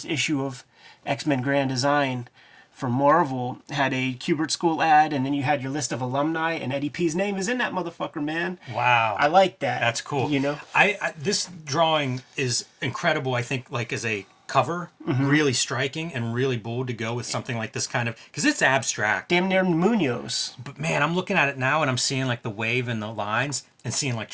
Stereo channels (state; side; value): identical; both; correlation 1.00